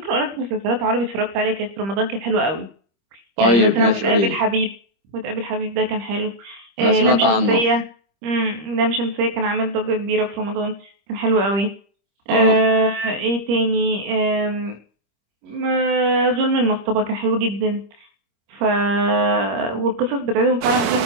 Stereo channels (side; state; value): left; late; 25 ms